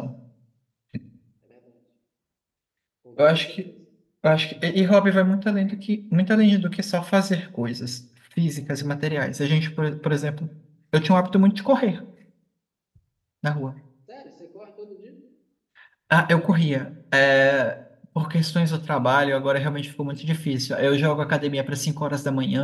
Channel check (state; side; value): identical; both; correlation 1.00